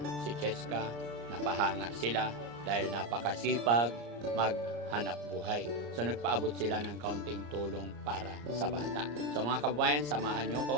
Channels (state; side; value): late; left; 34 ms